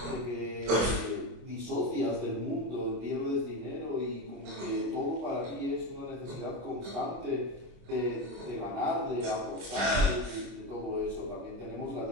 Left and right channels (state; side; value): late; left; 25 ms